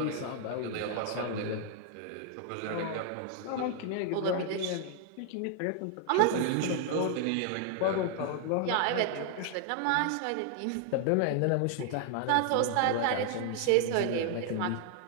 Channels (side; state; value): both; different; correlation 0.00